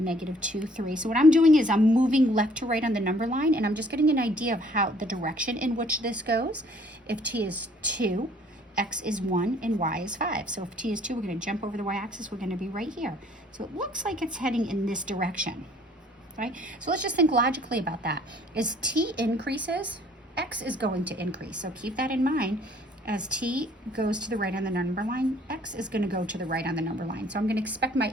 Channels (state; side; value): normal; both; correlation 0.59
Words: 2, 3. So what I'm doing is I'm moving left to right on the number line, and I'm just getting an idea of how the direction in which this goes. If t is 2, x is 1, and y is 5. So if t is 2, we're going to jump over the y-axis. We're going to be right here. So it looks like it's heading in this direction, right? So let's just think logically about that. As t increases, x is going to increase. So keep that in mind. As t goes to the right on the number line, x is going to go to the right on the number line. So I'm going to expect my